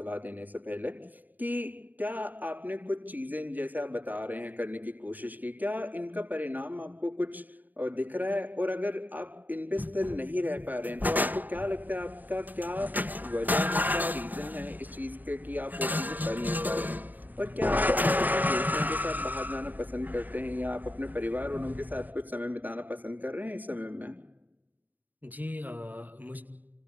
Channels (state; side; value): late; left; 0.085 ms